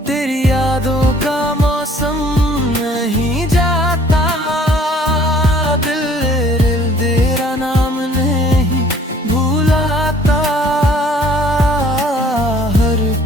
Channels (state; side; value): normal; both; correlation 0.56